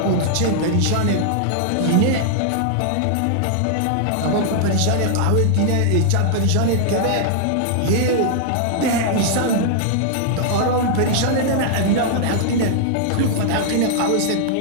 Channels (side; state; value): both; different; correlation -0.01